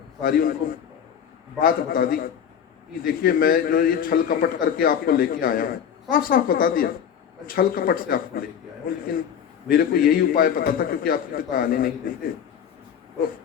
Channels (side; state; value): right; quieter; 8.5 dB